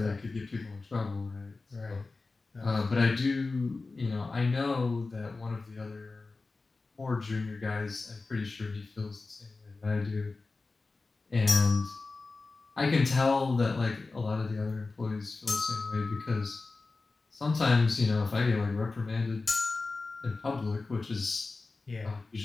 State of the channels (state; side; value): quieter; right; 3.7 dB